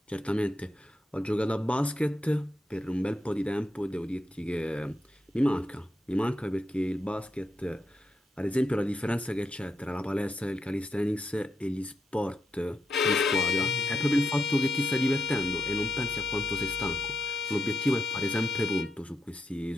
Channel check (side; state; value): both; normal; correlation 0.84